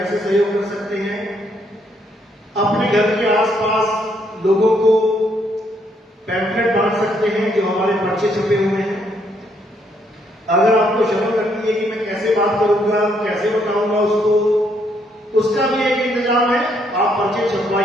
सहयोग कर सकते हैं? अपने घर के आसपास लोगों को पैम्फलेट बांट सकते हैं जो हमारे पर्चे छपे हुए हैं। अगर आपको शर्म लगती है कि मैं कैसे बात करूंगा, कैसे बताऊंगा उसको, उसका भी एक इंतजाम है। आप पर्चे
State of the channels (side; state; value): both; normal; correlation 0.72